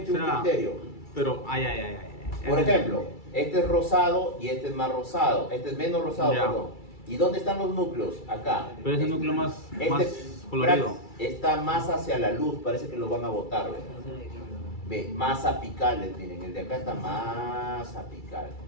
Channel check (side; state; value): right; late; 2.3 ms